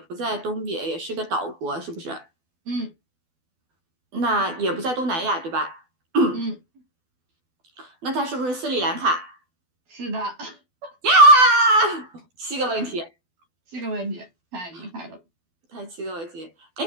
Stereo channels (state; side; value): late; left; 12 ms